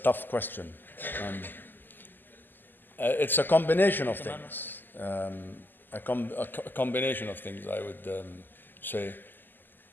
question. It's a combination of things. A combination of things, I would say.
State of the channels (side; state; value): right; late; 0.090 ms